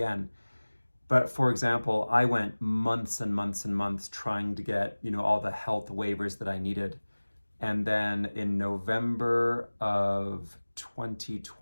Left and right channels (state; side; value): inverted; both; correlation -1.00